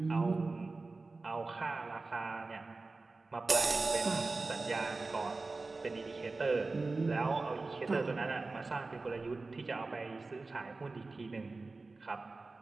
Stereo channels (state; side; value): quieter; left; 3.6 dB